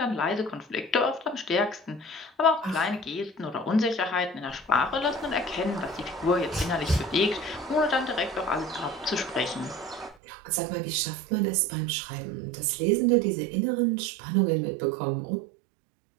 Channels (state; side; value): drops out; left; at 10.2 s